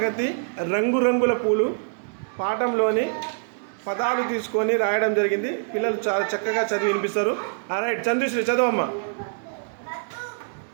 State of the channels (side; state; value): left; silent; digital silence